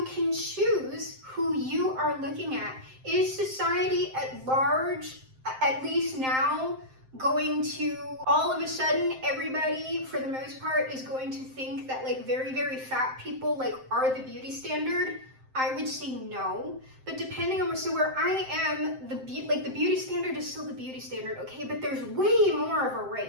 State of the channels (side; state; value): left; late; 7.7 ms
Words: can choose who you are looking at. Is society at large, at least now, going to all of a sudden everybody for the most part is going to think that like very, very fat people are the beauty standard? I would say no, but depending on where I am, the beauty standard is still the beauty standard, okay? But there's way more of a